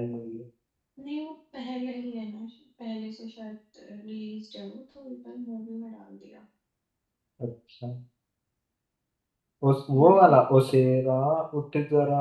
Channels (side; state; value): both; identical; correlation 1.00